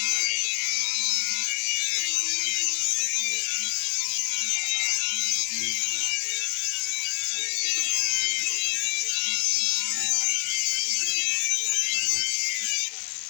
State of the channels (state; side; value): quieter; right; 32.0 dB